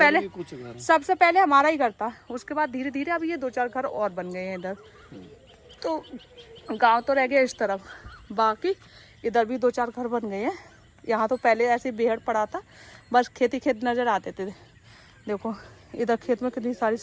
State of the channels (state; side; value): identical; both; correlation 1.00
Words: सबसे पहले हमारा ही घर था, उसके बाद धीरे धीरे अब ये 2-4 घर और बन गए हैं इधर। तो गाँव तो रह गया इस तरफ, बाकी इधर भी 2-4 घर बन गए हैं। यहाँ तो पहले ऐसे बेहड़ पड़ा था, बस खेत नजर आते थे। देखो इधर खेत में कितनी सारी